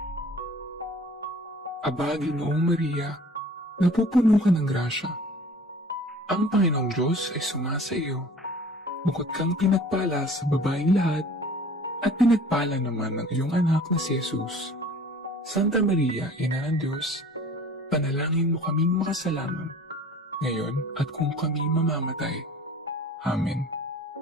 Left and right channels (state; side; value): normal; both; correlation 0.47